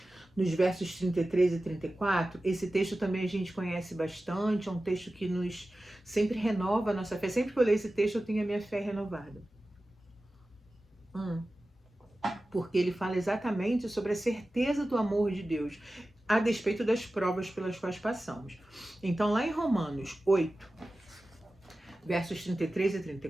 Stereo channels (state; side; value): normal; both; correlation 0.95